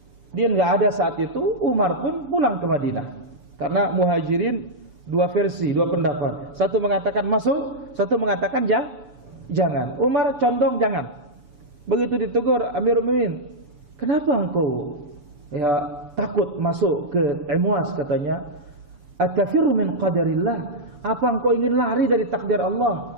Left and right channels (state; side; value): late; left; 6.7 ms